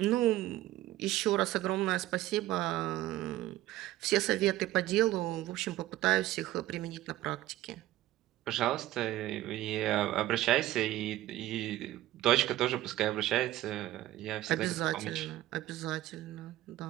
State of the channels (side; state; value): left; quieter; 15.3 dB